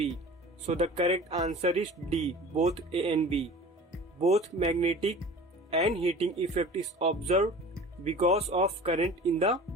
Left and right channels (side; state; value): both; normal; correlation 0.40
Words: So the correct answer is D. Both A and B. Both magnetic and heating effect is observed because of current in the